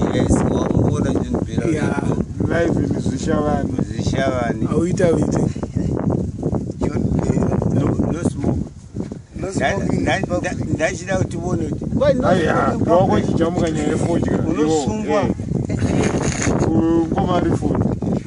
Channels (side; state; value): both; identical; correlation 1.00